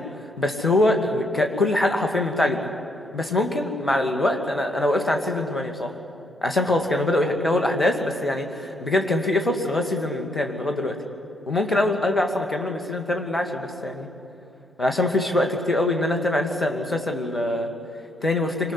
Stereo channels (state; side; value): normal; both; correlation 0.72